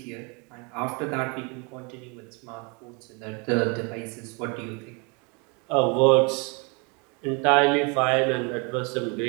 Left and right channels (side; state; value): left; quieter; 32.2 dB